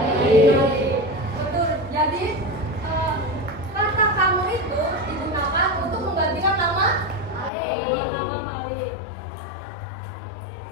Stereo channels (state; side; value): drops out; right; at 7.5 s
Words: Betul. Jadi kata kamu itu digunakan untuk menggantikan nama nama Malik.